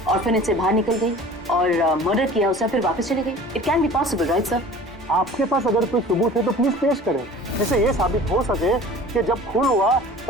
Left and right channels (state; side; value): normal; both; correlation 0.43